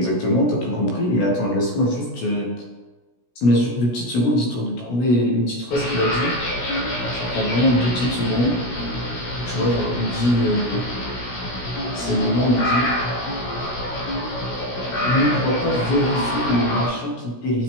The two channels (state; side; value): late; right; 16 ms